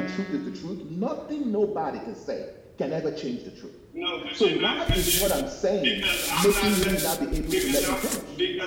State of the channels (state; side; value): identical; both; correlation 1.00